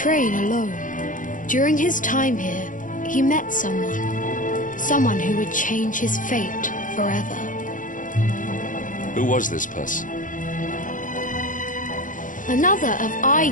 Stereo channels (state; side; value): late; right; 0.38 ms